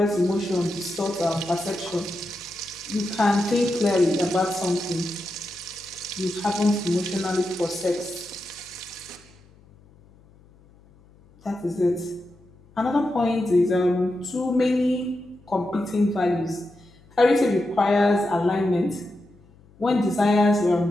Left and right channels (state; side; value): noise; left; hum, 28 dB below the sound